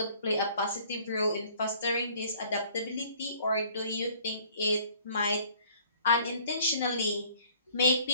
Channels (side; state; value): both; inverted; correlation -0.56